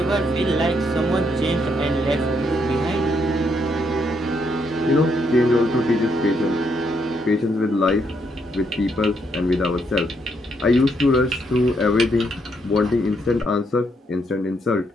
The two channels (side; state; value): both; normal; correlation 0.75